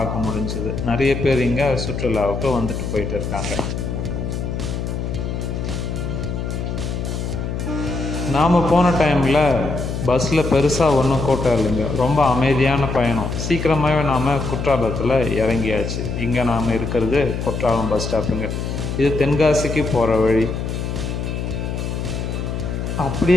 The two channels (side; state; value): left; noise; hum, 3 dB below the sound